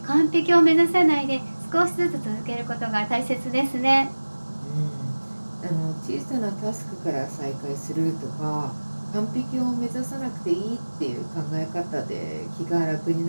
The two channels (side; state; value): both; inverted; correlation -1.00